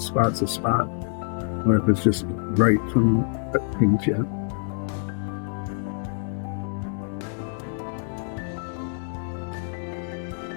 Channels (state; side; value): silent; right; 61 dB below the other